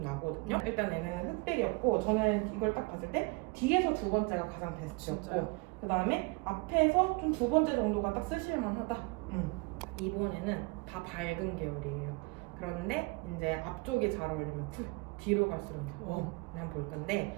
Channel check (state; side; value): quieter; left; 28.2 dB